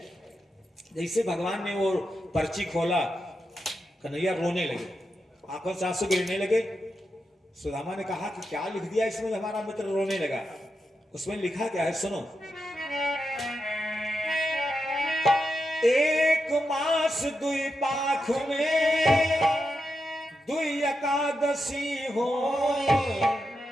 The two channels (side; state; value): both; normal; correlation 0.87